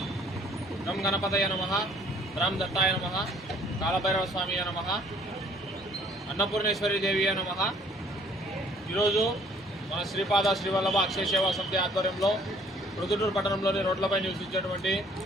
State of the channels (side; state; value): both; normal; correlation 0.58